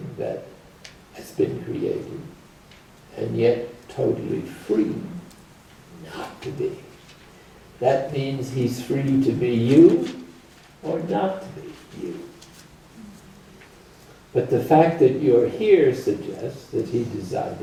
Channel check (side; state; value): both; identical; correlation 1.00